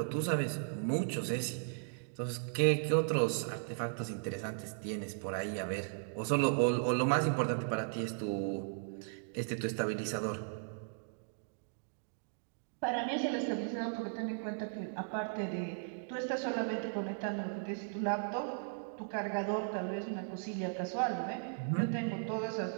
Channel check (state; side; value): silent; left; digital silence